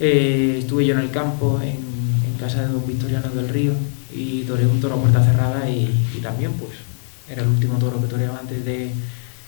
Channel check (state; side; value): silent; right; 66 dB below the other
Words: yo en el campo, en casa de don Victoriano del Río, y toreé un toro a puerta cerrada y también pues era el último toro que toreaba antes